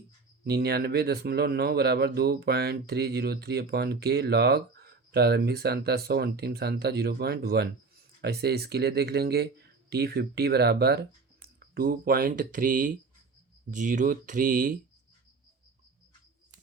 99.9 बराबर 2.303 अपॉन के लॉग प्रारंभिक सांद्रता 100 अंतिम सांद्रता 0.1। ऐसे इसके लिए देख लेंगे। T50 बराबर 2.303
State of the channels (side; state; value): left; quieter; 4.3 dB